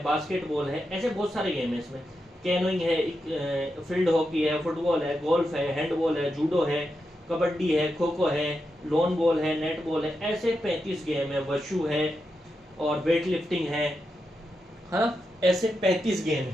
बास्केटबॉल है, ऐसे बहुत सारे गेम है इसमें। कैनोइंग है, फील्ड हॉकी है, फुटबॉल है, गोल्फ है, हैंडबॉल है, जूडो है, कबड्डी है, खो खो है, लॉन बॉल है, नेट बॉल है, ऐसे 35 गेम है। वशु है और वेट लिफ्टिंग है, हाँ, ऐसे 35 गेम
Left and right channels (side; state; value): both; normal; correlation 0.87